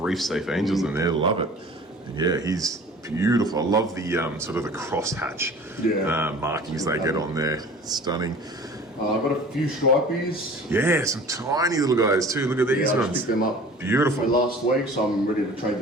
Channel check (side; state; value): both; normal; correlation 0.44